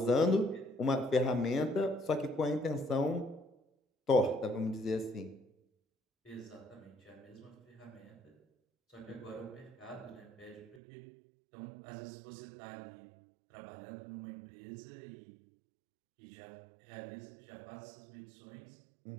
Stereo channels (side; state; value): left; drops out; at 10.8 s